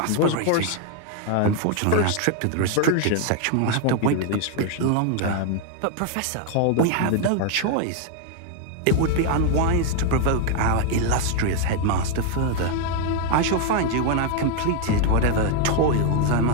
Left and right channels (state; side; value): different; both; correlation 0.00